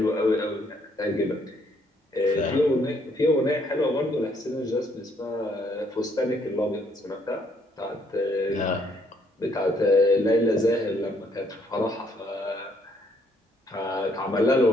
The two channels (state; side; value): normal; both; correlation 0.69